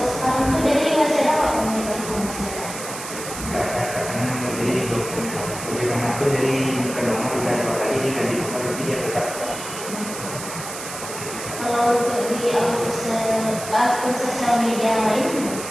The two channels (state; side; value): noise; right; hiss, 9 dB below the sound